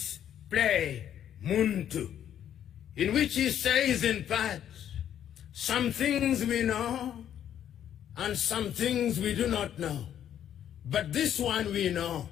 play, Muntu, in which he says in part, some things we know and some things we do not know. But this one we know,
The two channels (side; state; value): right; quieter; 10.1 dB